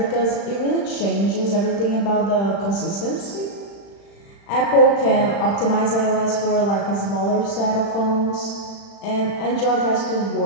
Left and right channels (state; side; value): late; right; 35 ms